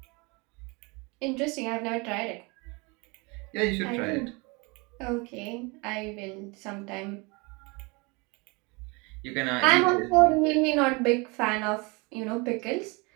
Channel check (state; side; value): quieter; left; 28.2 dB